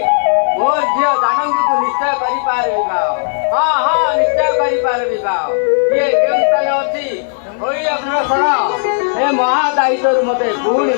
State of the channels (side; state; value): right; silent; digital silence